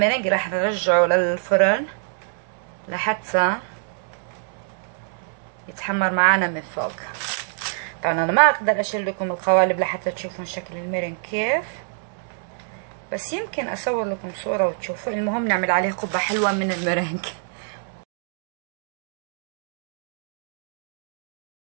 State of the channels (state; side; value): silent; left; digital silence